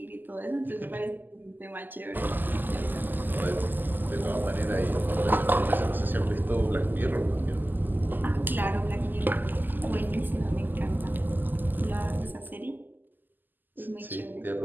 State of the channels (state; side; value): late; left; 0.088 ms